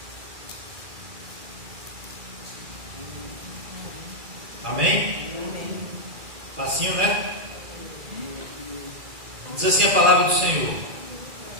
Amém? Facinho, né? Diz assim a palavra do Senhor:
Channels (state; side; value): late; left; 2.4 ms